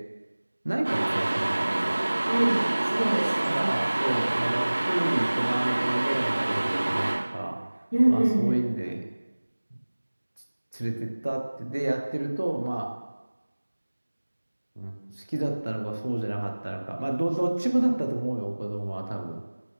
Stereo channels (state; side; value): inverted; both; correlation -1.00